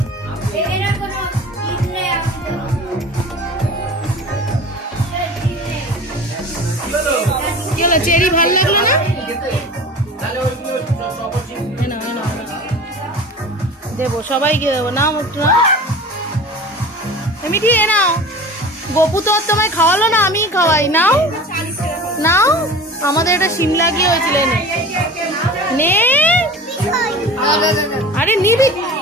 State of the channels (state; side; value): normal; both; correlation 0.37